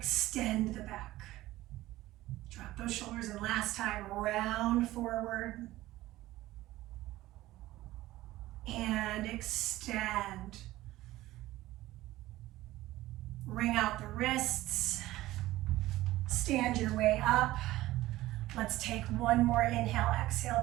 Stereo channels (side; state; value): left; quieter; 16.6 dB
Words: the back. Drop those shoulders, and last time, round forward and extend. Ring out the wrists. Stand your way up. Let's take one more inhale, exhale